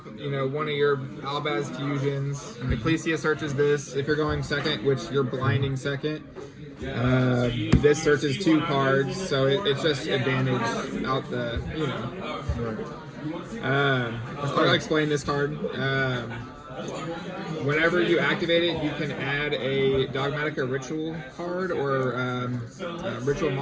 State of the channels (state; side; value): identical; both; correlation 1.00